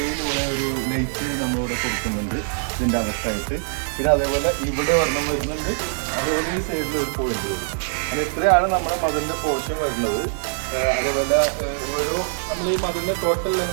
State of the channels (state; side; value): silent; left; digital silence